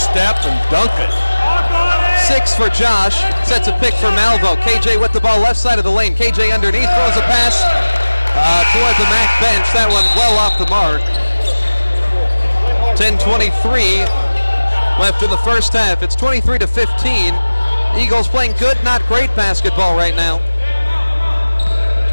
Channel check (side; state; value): both; inverted; correlation -1.00